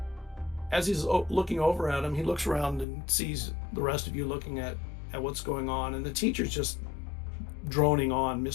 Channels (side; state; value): right; drops out; at 2.9 s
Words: As he's looking over at him, he looks around and sees the rest of you looking at what's going on, and the teacher's just droning on.